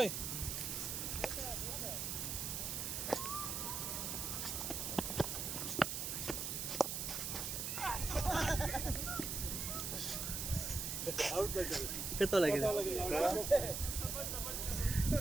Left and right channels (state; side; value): noise; right; hiss, 2 dB below the sound